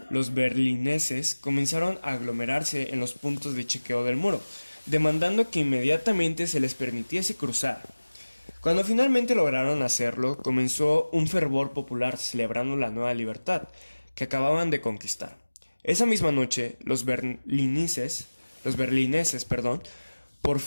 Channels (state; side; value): inverted; both; correlation -1.00